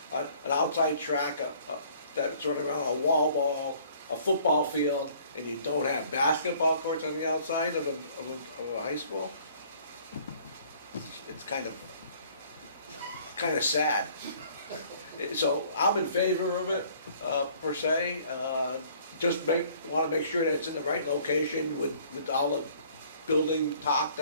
an outside track, that's running around, a wall ball, a football field, and you don't have basketball courts on the outside of a high school. It's kind of sad. So I'm in favor of it, per se. Just want to make sure that it's in the right location with all the building talk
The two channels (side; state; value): both; inverted; correlation -0.56